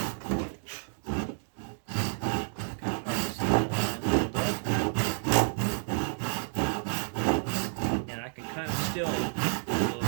And I can kind of still a little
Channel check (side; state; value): left; silent; digital silence